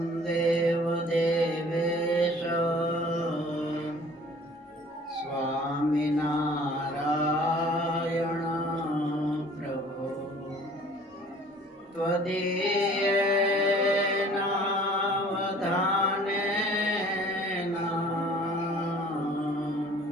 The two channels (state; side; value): normal; both; correlation 0.51